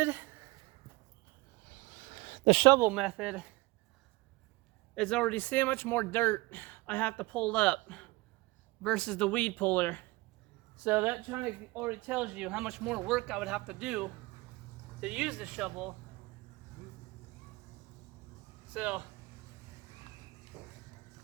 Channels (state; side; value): quieter; left; 21.8 dB